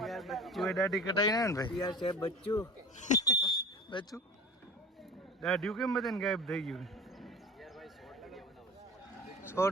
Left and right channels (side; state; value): both; normal; correlation 0.39